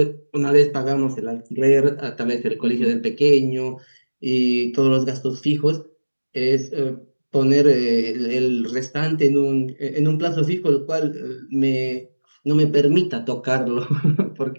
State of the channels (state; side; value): inverted; both; correlation -1.00